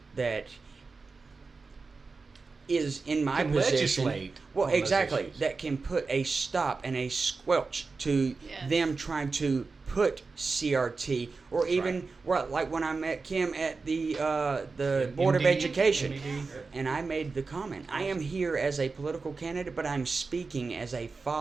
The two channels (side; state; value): left; quieter; 4.2 dB